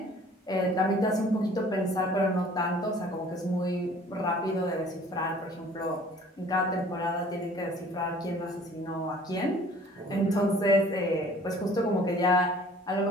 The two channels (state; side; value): normal; both; correlation 0.52